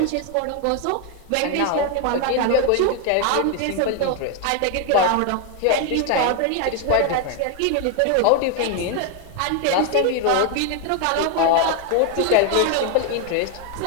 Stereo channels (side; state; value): both; different; correlation 0.01